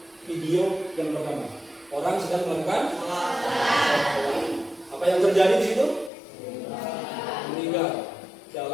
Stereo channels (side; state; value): right; drops out; at 6.1 s